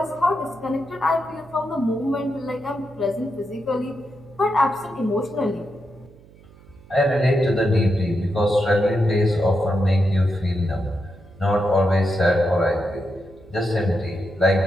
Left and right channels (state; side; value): noise; right; hum, 24 dB below the sound